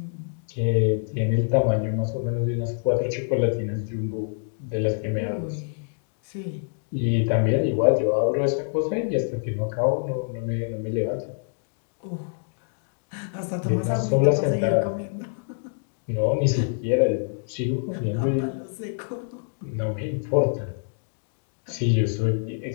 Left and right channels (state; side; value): silent; right; digital silence